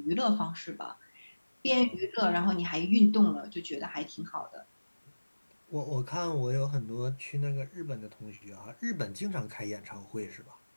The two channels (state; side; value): inverted; both; correlation -1.00